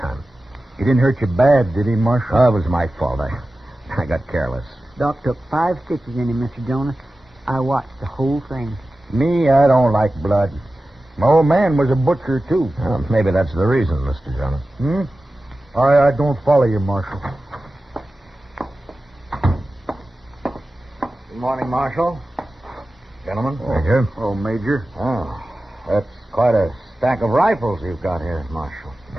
He didn't hurt you bad, did he, Marshal? Oh, it was my fault. I got careless. Doc took 5 stitches in him, Mr. Jonas. I watched the whole thing. Me, I don't like blood. My old man was a butcher, too. Well, maybe that's the reason, Mr. Jonas. I don't follow you, Marshal. Good morning, Marshal. Gentlemen. Major. Oh, Major. Oh, that's quite a stack of rifles you've got here, Marshal.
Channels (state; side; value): normal; both; correlation 0.95